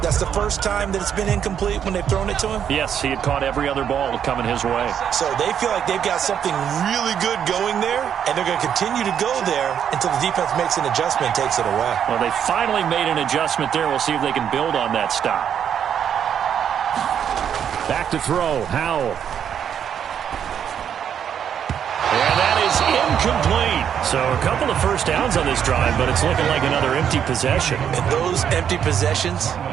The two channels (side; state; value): left; quieter; 8.6 dB